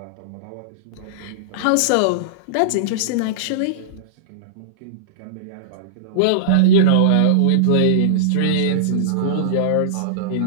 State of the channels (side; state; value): both; different; correlation -0.02